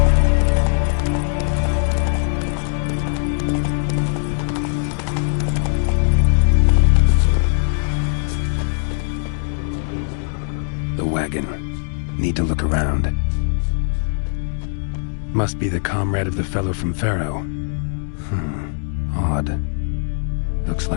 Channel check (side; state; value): right; silent; digital silence